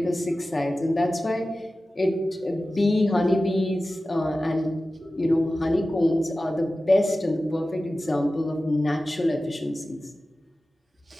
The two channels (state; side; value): normal; both; correlation 0.95